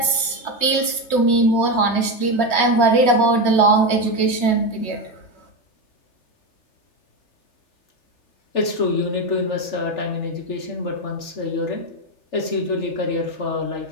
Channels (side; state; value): right; late; 3.2 ms